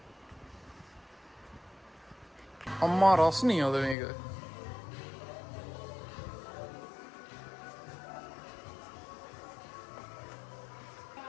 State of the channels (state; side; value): drops out; right; at 4.0 s